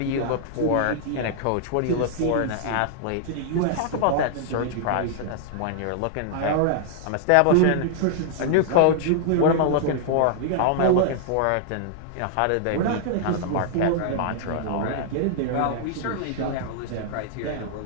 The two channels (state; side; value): different; both; correlation -0.01